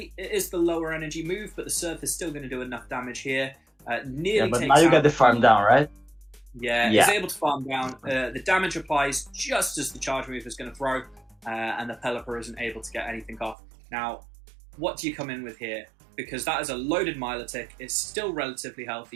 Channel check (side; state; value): left; drops out; at 13.6 s